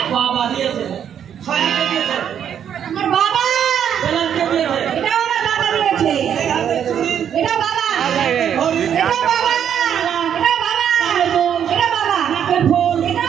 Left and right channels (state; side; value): quieter; left; 8.9 dB